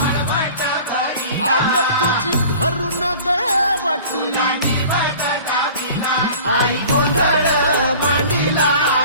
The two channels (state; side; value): inverted; both; correlation -0.43